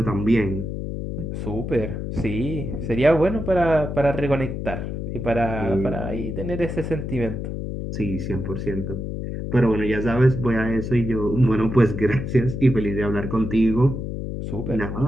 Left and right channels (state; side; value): noise; left; hum, 5 dB below the sound